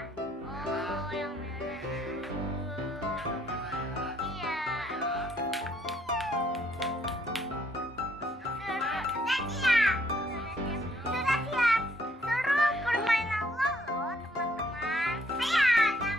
Oh, yang merah. Yang merah ya. Iya. Ya. Sudah siap. Sudah siap. Suruh permainan Lolo, teman-teman. Saya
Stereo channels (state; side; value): normal; both; correlation 0.67